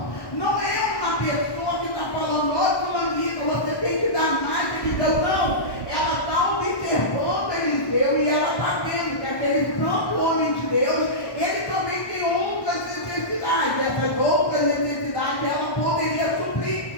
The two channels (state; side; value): late; right; 1.1 ms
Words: Não é uma pessoa que está falando: ô fulaninho, você tem que dar mais a Eliseu. Não, ela está observando Eliseu e ela está vendo que aquele santo homem de Deus, ele também tem outras necessidades. Essas outras necessidades ela poderia suprir.